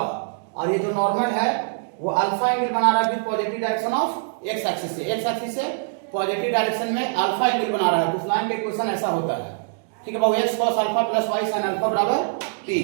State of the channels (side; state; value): left; silent; digital silence